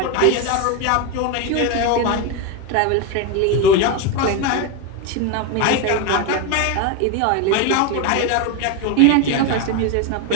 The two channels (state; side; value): different; both; correlation 0.02